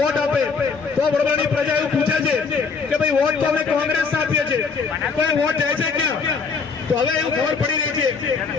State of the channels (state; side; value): quieter; right; 5.2 dB